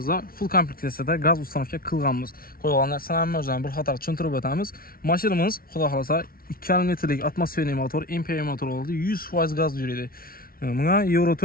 full kompleksiyada gaz ustanovka qilganmiz. Qo'yilgan narsalarni o'zini bir qator tushuntirib o'tamiz. Mashinamiz, xudo xolasa, 2,5 litrlik atmosferli motor, MPI motor oladi. 100% gaz yuradi. Bunga Euro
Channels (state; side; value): late; right; 0.43 ms